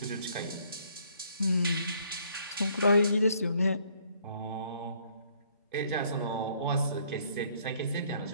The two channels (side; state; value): both; inverted; correlation -0.65